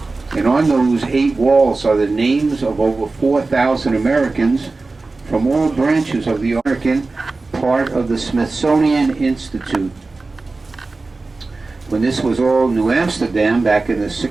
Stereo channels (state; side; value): quieter; left; 3.6 dB